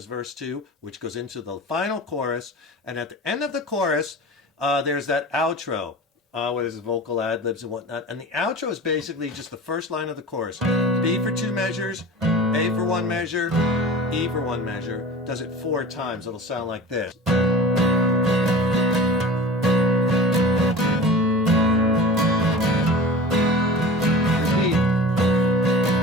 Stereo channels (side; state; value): both; normal; correlation 0.36